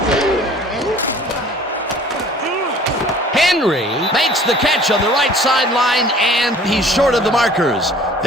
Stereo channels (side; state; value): both; normal; correlation 0.50